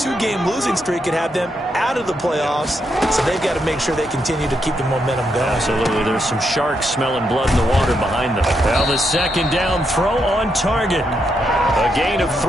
losing streak could have them out of the playoffs, so they've got to make sure they continue to keep the momentum going. Absolutely. There's some sharks smelling blood in the water behind them. Well, the second down throw on target. A gain of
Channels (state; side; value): normal; both; correlation 0.80